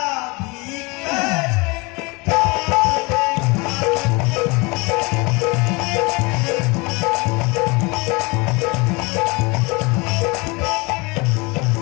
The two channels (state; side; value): quieter; right; 26.7 dB